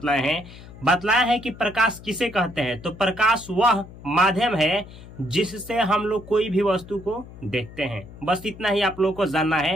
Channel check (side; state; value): left; noise; hum, 17 dB below the sound